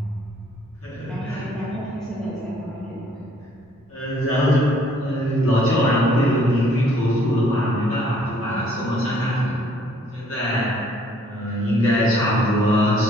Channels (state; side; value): normal; both; correlation 0.62